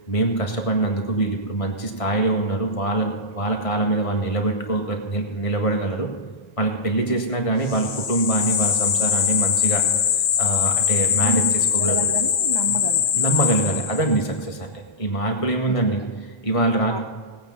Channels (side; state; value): right; late; 1.5 ms